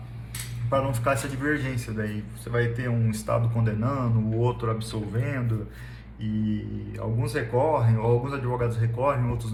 não ficar essa divergência daí. Você vai ter um estado condenando, o outro absolvendo, e alguns recorrem, ou alguns advogados recorrem, outros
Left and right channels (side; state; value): both; identical; correlation 1.00